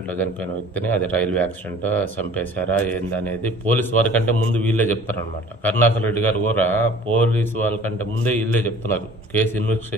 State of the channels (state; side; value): normal; both; correlation 0.48